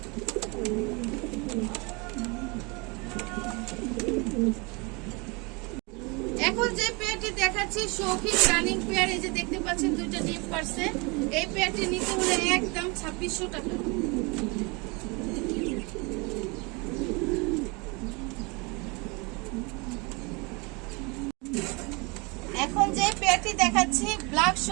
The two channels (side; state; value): left; quieter; 28.8 dB